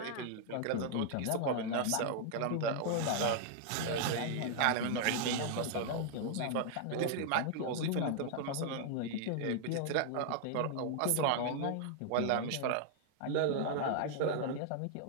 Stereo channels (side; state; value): both; different; correlation -0.01